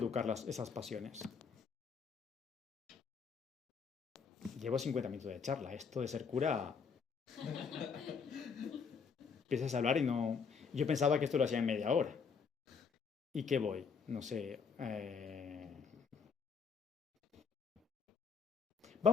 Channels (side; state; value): right; quieter; 5.8 dB